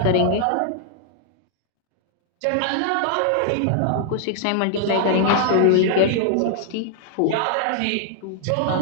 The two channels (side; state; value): both; different; correlation -0.01